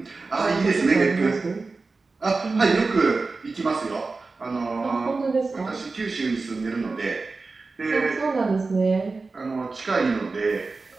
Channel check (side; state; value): left; quieter; 3.9 dB